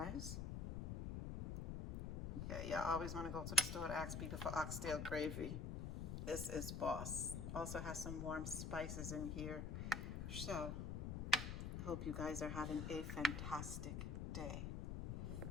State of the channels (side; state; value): left; noise; rumble, 3 dB below the sound